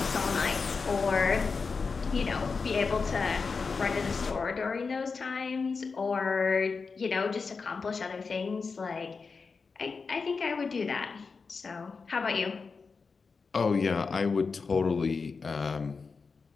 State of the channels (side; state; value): right; quieter; 4.8 dB